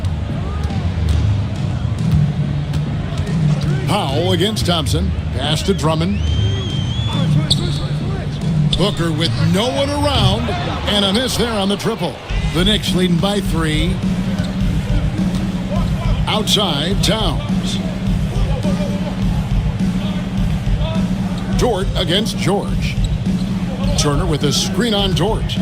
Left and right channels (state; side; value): identical; both; correlation 1.00